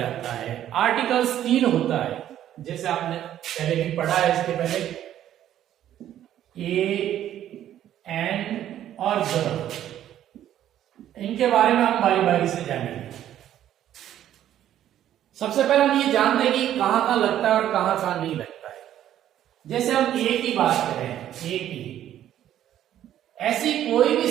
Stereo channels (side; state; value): left; quieter; 11.5 dB